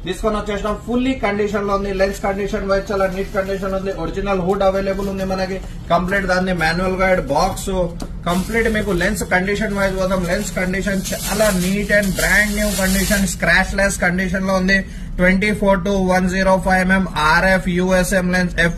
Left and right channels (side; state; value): both; identical; correlation 1.00